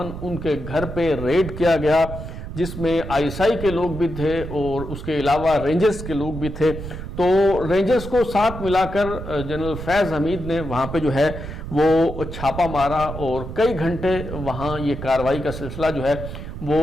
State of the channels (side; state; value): right; noise; rumble, 9 dB below the sound